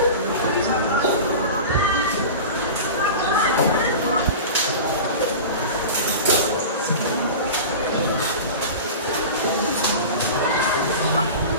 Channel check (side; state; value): both; inverted; correlation -0.31